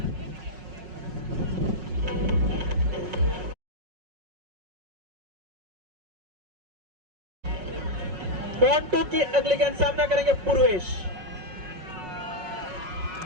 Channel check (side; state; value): left; late; 5.5 ms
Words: मोंटू की अगली गेंद सामना करेंगे पूर्वेश।